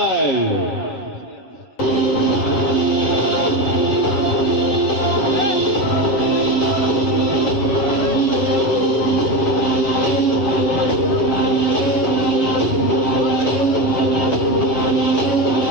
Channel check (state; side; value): late; right; 7.8 ms